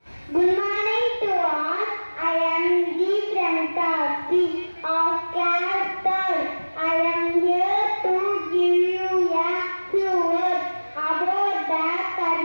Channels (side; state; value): both; inverted; correlation -1.00